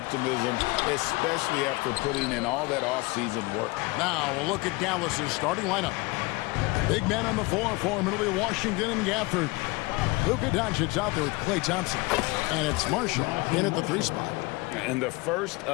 especially after putting in all that offseason work. Now we'll look at Dallas's starting lineup. Big man on the floor for Middle Washington and Gafford. Luka Doncic out there with Klay Thompson. And it's Marshall in at the 3 spot. And the first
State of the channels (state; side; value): quieter; right; 24.1 dB